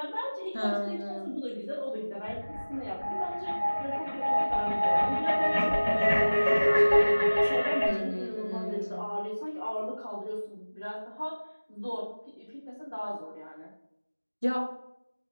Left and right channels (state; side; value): inverted; both; correlation -1.00